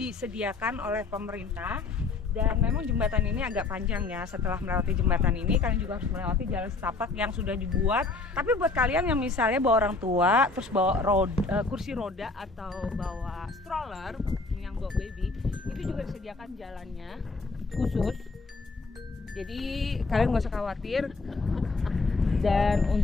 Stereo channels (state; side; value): quieter; right; 3.9 dB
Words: oleh pemerintah. Dan memang jembatan ini agak panjang ya. Setelah melewati jembatan ini kalian juga harus melewati jalan setapak yang sudah dibuat. Tapi buat kalian yang misalnya bawa orang tua, terus bawa kursi roda atau bawa stroller yang bawa baby, itu juga disediakan jalannya khusus. Jadi kalian nggak usah khawatir. Dan